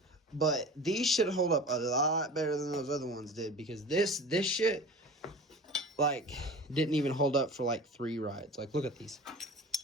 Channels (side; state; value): both; normal; correlation 0.38